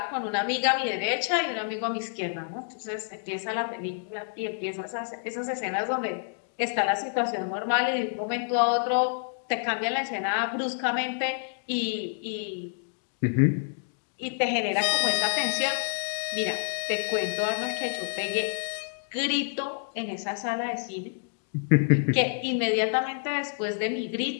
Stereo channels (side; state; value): right; silent; digital silence